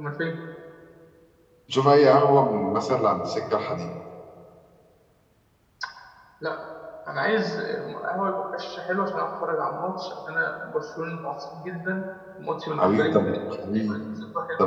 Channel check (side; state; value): both; identical; correlation 1.00